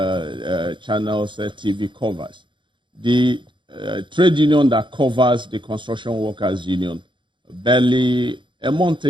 channels TV covers, the trade union that covers the construction workers union, barely a month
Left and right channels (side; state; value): left; late; 0.23 ms